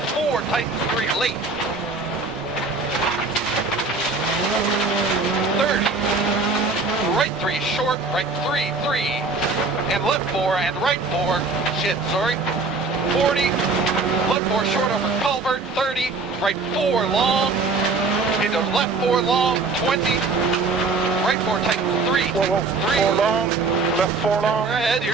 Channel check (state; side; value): quieter; left; 3.8 dB